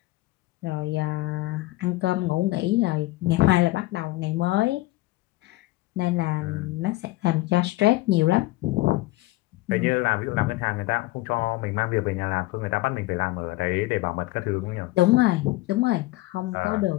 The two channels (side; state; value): right; quieter; 19.1 dB